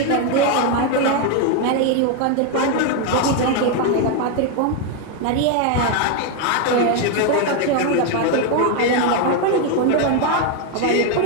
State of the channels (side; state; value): both; different; correlation 0.01